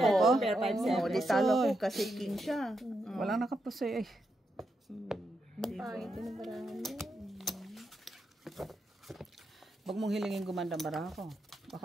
ko? Pair 5-7. Oo, di talo ko kasi king siya. Walang nakapusoy eh. Pangit yung barahan niya. Huwag mong hilingin gumanda ang baraha ko. Baka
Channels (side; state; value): both; normal; correlation 0.84